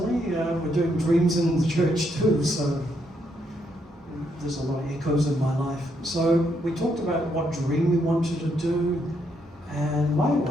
we're doing dreams in the church too, so there's a lot of echoes in my life. So we talked about what dream we wanted to do, and my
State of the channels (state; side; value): normal; both; correlation 0.76